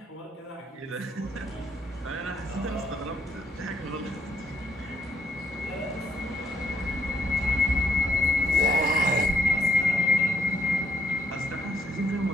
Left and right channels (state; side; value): normal; both; correlation 0.73